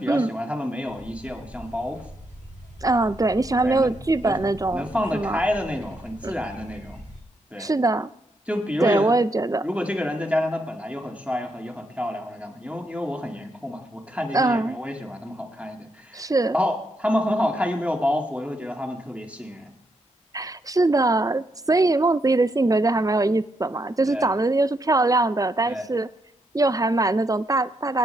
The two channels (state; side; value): normal; both; correlation 0.79